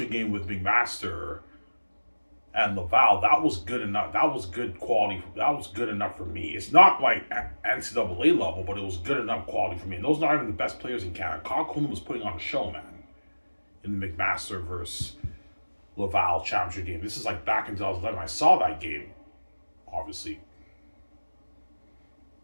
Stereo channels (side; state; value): both; inverted; correlation -1.00